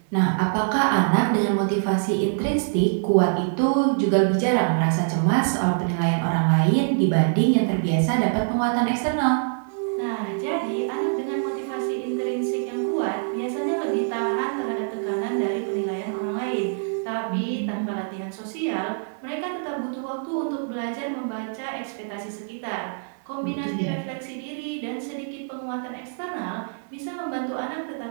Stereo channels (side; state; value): left; silent; digital silence